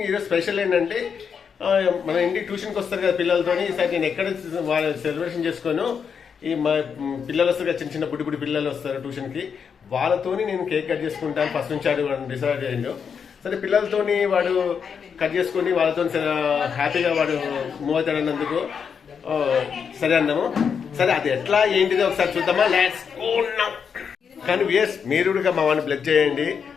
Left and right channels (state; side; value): quieter; right; 6.7 dB